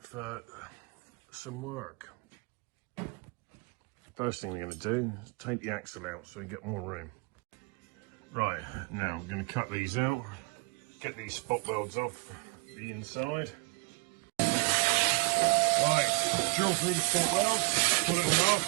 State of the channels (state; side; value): quieter; left; 27.7 dB